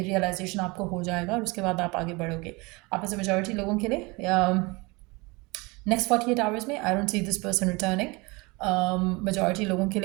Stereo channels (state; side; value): quieter; left; 25.7 dB